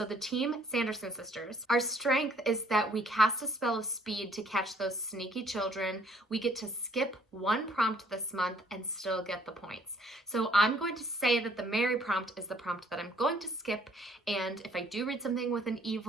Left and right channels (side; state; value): both; normal; correlation 0.61